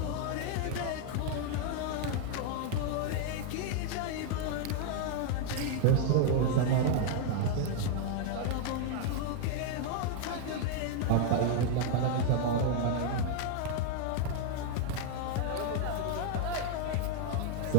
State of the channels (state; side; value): different; both; correlation 0.00